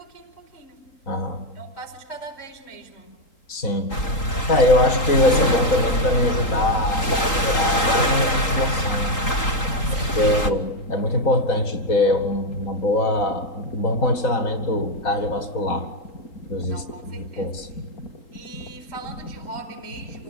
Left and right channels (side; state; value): right; late; 3.8 ms